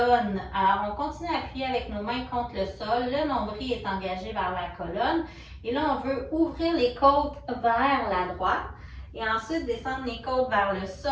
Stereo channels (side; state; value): both; identical; correlation 1.00